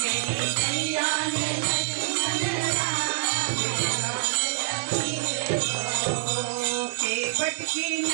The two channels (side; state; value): left; silent; 61 dB below the other